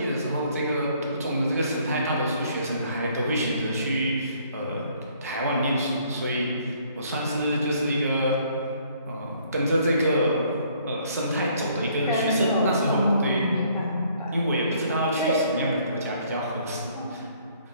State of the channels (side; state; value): both; inverted; correlation -0.63